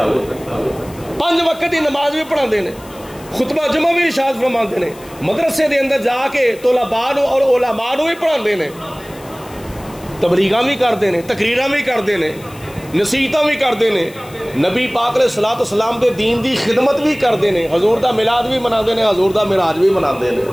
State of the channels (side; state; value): left; noise; hiss, 22 dB below the sound